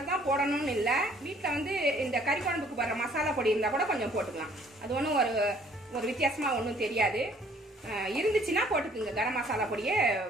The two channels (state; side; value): normal; both; correlation 0.59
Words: தான் போடணும்னு இல்லை. வீட்டில் வந்து இந்த கறி குழம்புக்கு போடுற மசாலா பொடி இருந்தால் கூட கொஞ்சம் போட்டுக்கலாம். அது ஒன்றும் ஒரு வித்தியாசமாக ஒன்றும் தெரியாது. இருந்துச்சுன்னா போட்டுக்குங்க. கரம் மசாலா பொடியை